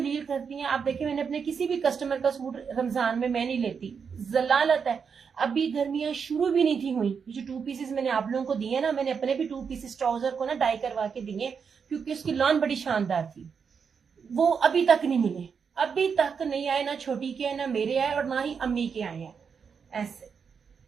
करती हैं। आप देखिए, मैंने अपने किसी भी कस्टमर का सूट रमजान में मैं नहीं लेती, जलालत है। अभी गर्मियां शुरू भी नहीं थी हुई। जो 2 पीसेस मैंने आप लोगों को दिए ना, मैंने अपने भी 2 पीसेस ट्राउजर को ना डाई करवा के दिए क्योंकि उसकी लॉन बड़ी शानदार थी। वो अभी तक नहीं मिले, अभी तक नहीं आए। ना छोटी के आए, ना मेरे आए, और ना ही अम्मी के आए हैं। ऐसे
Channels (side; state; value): left; quieter; 6.3 dB